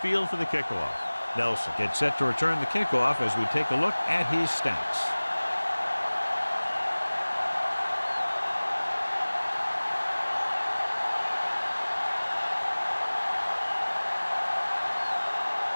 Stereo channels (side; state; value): both; inverted; correlation -1.00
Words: for the kickoff. Nelson gets set to return the kickoff as we take a look at his stats.